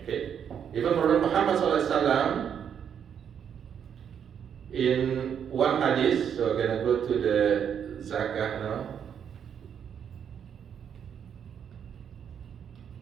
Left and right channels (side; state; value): left; quieter; 8.2 dB